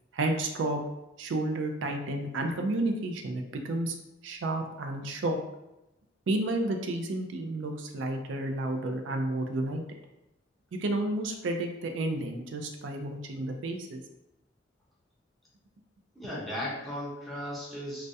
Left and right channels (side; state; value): both; normal; correlation 0.51